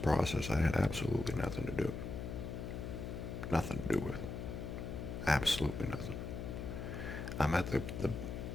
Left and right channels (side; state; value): left; noise; hum, 6 dB below the sound